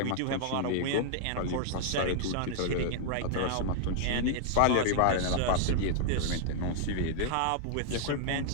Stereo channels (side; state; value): both; different; correlation -0.01